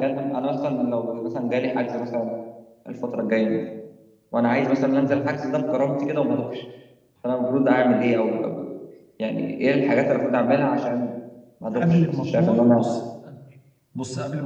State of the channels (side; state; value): both; identical; correlation 1.00